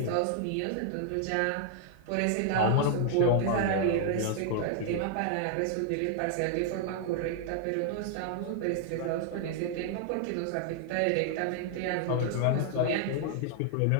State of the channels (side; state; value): both; different; correlation 0.00